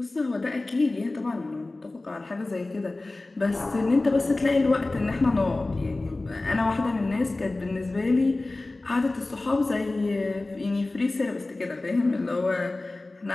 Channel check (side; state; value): right; quieter; 3.0 dB